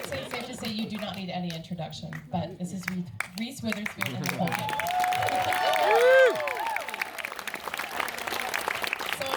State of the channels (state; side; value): identical; both; correlation 1.00